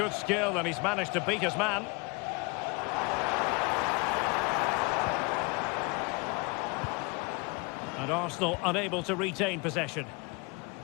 skill, and he's managed to beat his man. And Arsenal unable to retain possession.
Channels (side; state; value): right; quieter; 29.5 dB